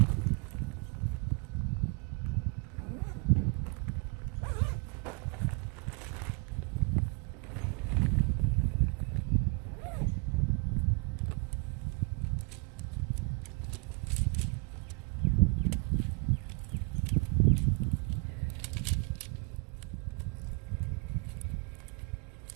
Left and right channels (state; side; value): quieter; left; 34.2 dB